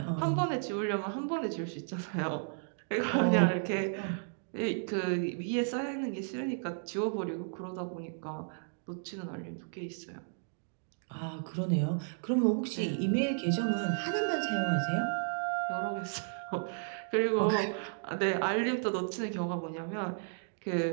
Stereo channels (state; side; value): silent; left; digital silence